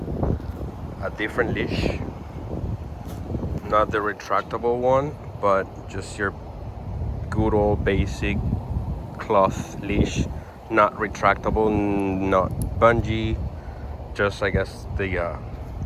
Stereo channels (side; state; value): both; identical; correlation 1.00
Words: a different leash, not the retractable one, but just your good old basic cloth leash, not retractable, not bungee, just I guess the